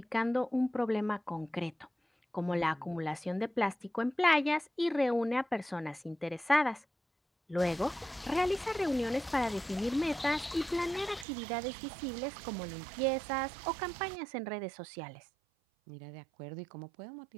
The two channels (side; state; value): left; drops out; at 11.2 s